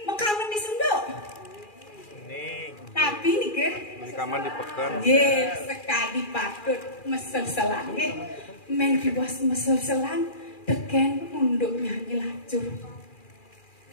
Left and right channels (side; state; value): right; late; 2.4 ms